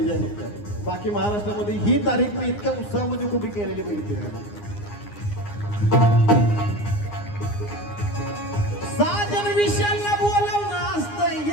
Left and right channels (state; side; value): late; right; 9.7 ms